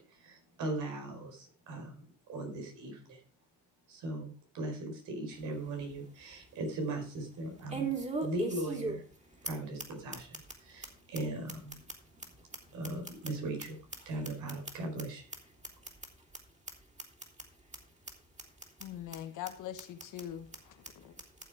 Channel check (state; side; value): normal; both; correlation 0.34